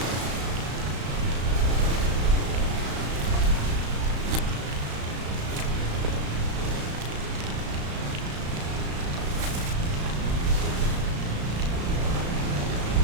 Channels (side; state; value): left; late; 35 ms